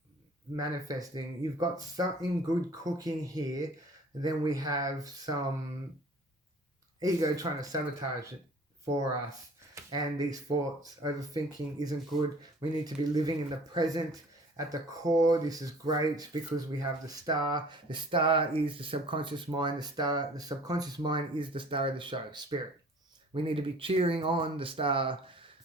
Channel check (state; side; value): normal; both; correlation 0.49